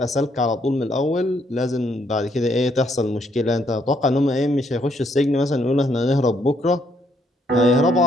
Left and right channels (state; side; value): normal; both; correlation 0.72